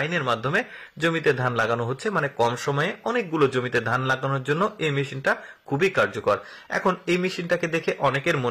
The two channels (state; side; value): identical; both; correlation 1.00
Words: মাধ্যমে জমিতে ধান লাগানো হচ্ছে। মানে কম সময়ে অনেকগুলো জমিতে ধান লাগানোর জন্য এই মেশিনটা খুবই কার্যকর। এখন এই মেশিনটাকে দেখে অনেকের